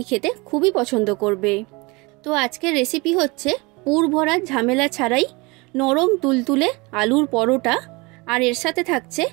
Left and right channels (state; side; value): quieter; left; 26.1 dB